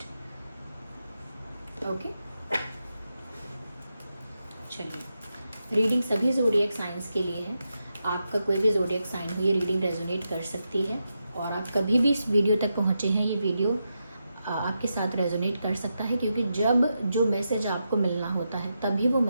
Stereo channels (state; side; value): inverted; both; correlation -0.86